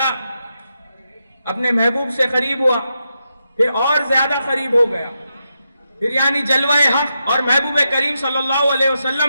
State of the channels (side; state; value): both; inverted; correlation -0.86